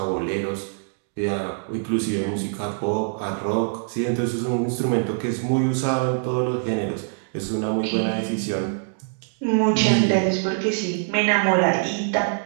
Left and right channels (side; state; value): left; silent; digital silence